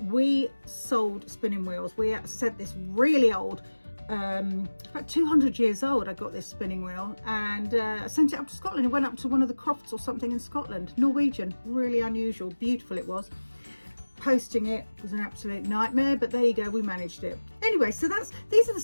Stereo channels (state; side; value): inverted; both; correlation -1.00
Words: sold spinning wheels. We said this really old, about 200 years old, I got this spinning wheel, and I sent it up to Scotland. It went up to one of the crofts or something in Scotland, Norwegian, really unusual, beautiful it was. Posting it was an absolute nightmare, but there you go, we managed it. Anyway, so these are the